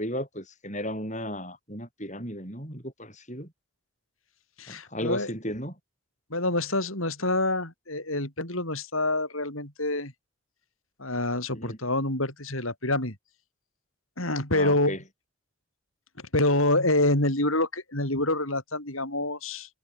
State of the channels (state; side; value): normal; both; correlation -0.19